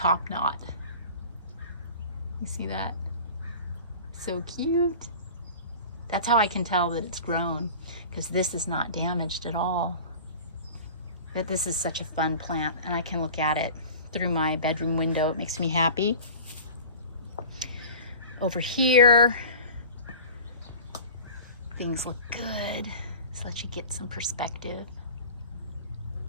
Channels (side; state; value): both; inverted; correlation -0.39